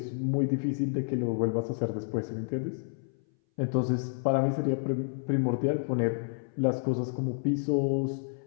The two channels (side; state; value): right; silent; 58 dB below the other